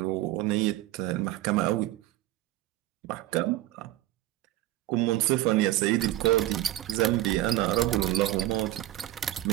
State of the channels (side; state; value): left; quieter; 15.3 dB